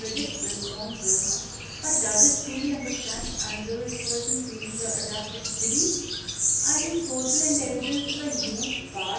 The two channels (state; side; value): identical; both; correlation 1.00